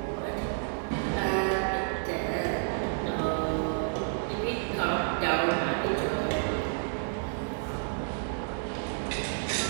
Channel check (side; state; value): left; silent; 58 dB below the other